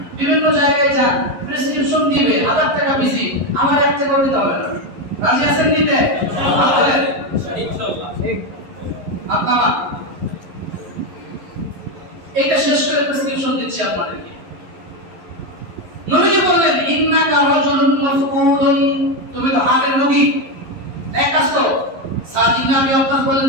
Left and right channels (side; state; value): left; late; 11 ms